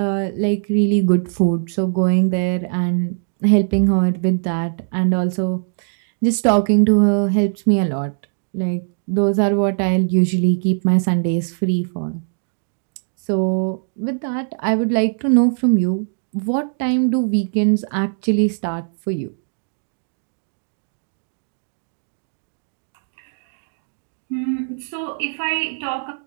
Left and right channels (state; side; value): silent; left; digital silence